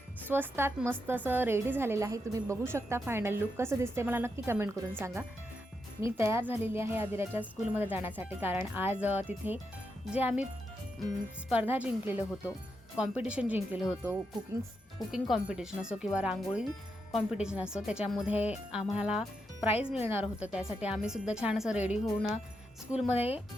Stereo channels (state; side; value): normal; both; correlation 0.84